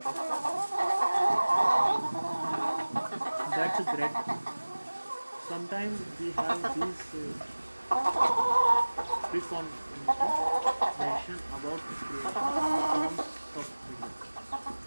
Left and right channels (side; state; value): both; inverted; correlation -1.00